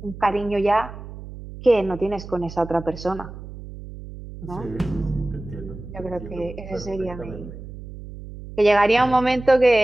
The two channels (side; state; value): right; noise; hum, 13 dB below the sound